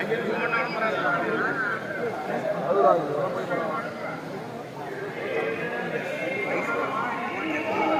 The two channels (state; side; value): identical; both; correlation 1.00